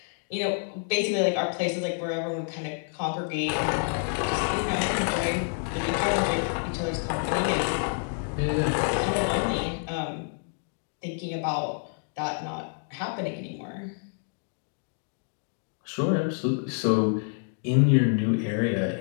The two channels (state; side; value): silent; right; 59 dB below the other